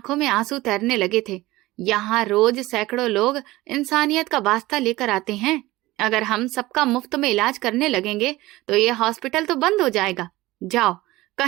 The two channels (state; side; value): quieter; left; 18.7 dB